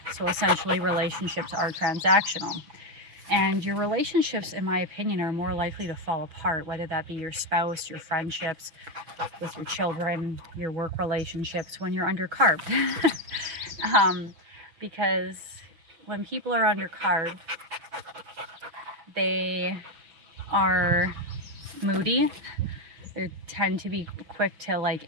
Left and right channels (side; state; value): left; late; 6.0 ms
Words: so essentially relationships are transactional. And your relationships, in my opinion, are more likely to fall apart, whether that be your spouse, your friendships with your children, your work relationships, when you're under carb. Because when people are under carb, they are moody. They tend to be quick to like